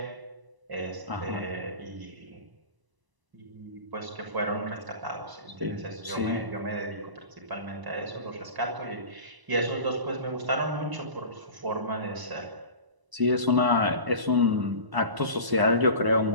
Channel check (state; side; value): late; left; 1.0 ms